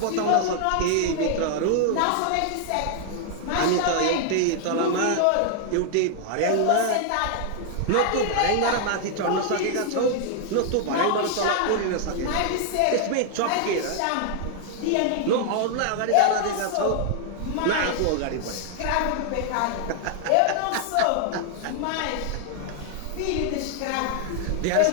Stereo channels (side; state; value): both; different; correlation 0.00